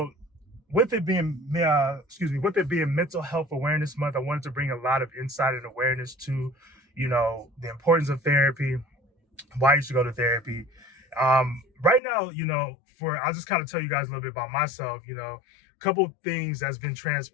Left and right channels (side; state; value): right; drops out; at 12.0 s